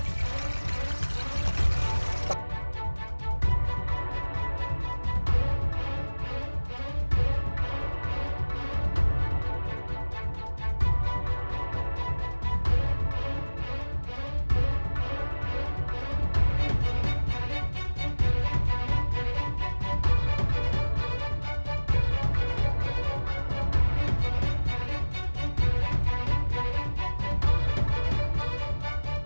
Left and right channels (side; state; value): both; inverted; correlation -1.00